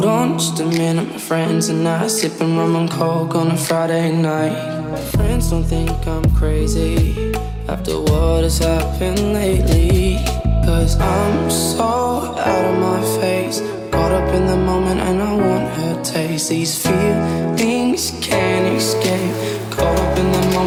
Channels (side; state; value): both; identical; correlation 1.00